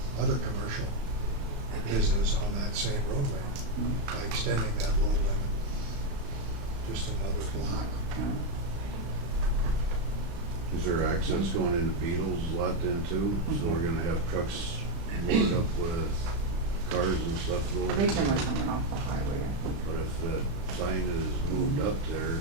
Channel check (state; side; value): late; left; 35 ms